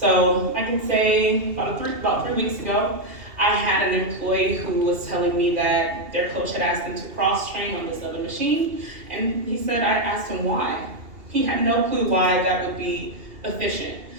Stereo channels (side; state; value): left; late; 2.8 ms